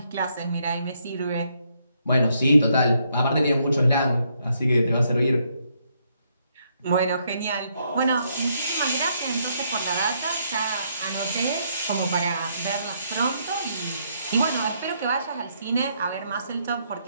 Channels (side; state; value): both; inverted; correlation -0.74